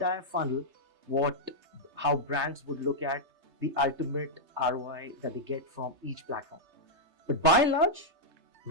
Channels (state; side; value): late; left; 3.3 ms